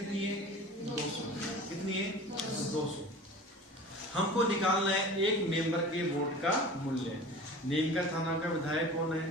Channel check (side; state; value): both; normal; correlation 0.39